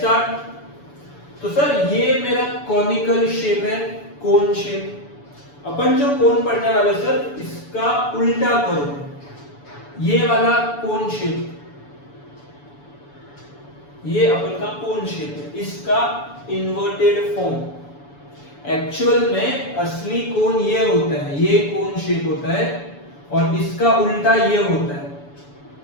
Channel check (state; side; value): late; right; 7.0 ms